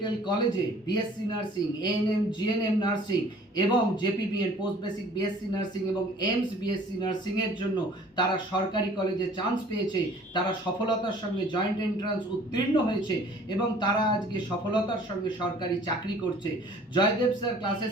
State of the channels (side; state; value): both; normal; correlation 0.52